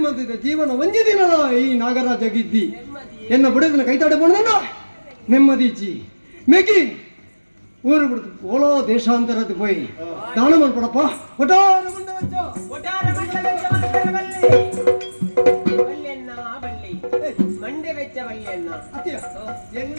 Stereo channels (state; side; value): inverted; both; correlation -1.00